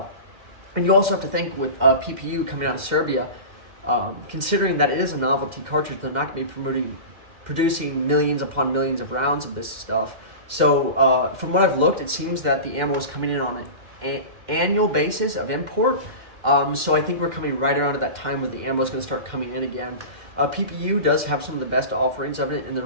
And you also have to think with PPU coming out of Serbia, considering that it is a novelty cartridge, they're not going to be producing millions upon millions of rounds of this stuff. So from what I've looked, it seems that the ammo is coming in on an annual basis of import. So I think we're coming right around at that time where the ammo is going to start coming in again. PPU does have some of the best offerings of it in their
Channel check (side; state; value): left; late; 2.1 ms